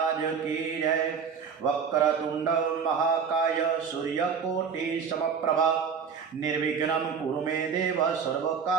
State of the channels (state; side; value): quieter; left; 6.4 dB